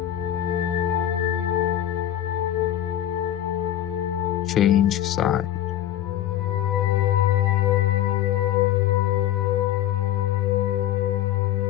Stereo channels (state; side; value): quieter; right; 12.0 dB